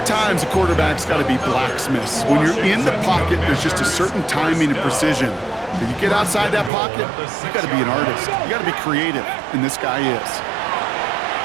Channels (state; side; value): drops out; left; at 6.7 s